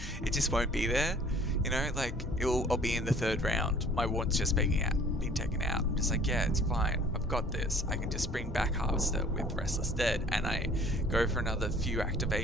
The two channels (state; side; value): normal; both; correlation 0.52